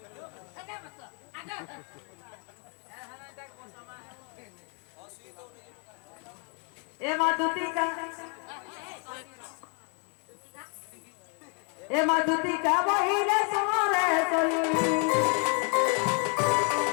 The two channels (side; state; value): right; quieter; 38.9 dB